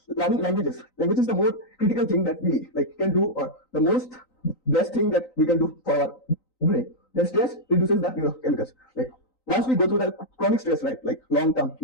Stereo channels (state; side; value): late; right; 3.9 ms